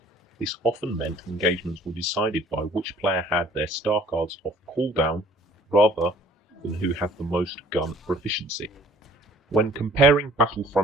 This often meant engagements were decided by which player had their star cards off cooldown rather than who had the most gun proficiency. When comparing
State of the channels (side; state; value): both; normal; correlation 0.54